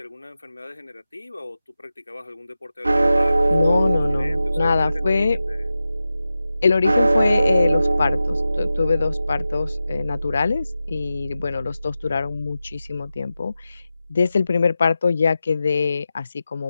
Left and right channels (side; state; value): both; inverted; correlation -0.93